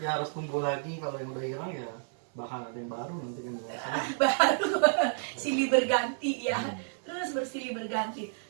harus tumbuh lagi. Kalau yang udah hilang ya bakal ada yang baru nanti kan biasanya. Baru silih berganti ya. Terus bersilih berganti.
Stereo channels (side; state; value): left; silent; digital silence